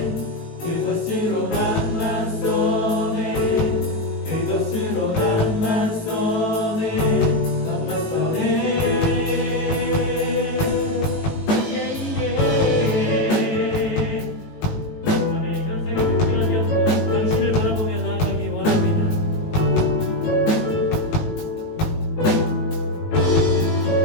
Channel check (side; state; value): right; late; 18 ms